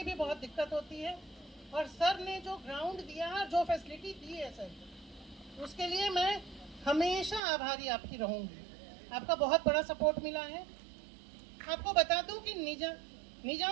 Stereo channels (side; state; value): left; drops out; at 7.4 s